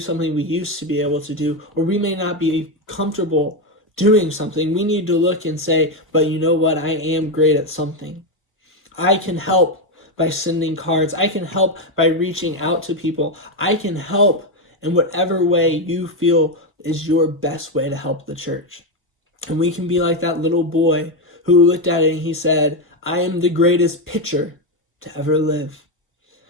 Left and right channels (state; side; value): normal; both; correlation 0.08